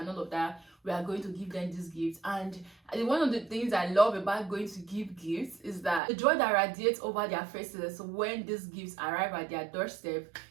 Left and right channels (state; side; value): drops out; left; at 6.0 s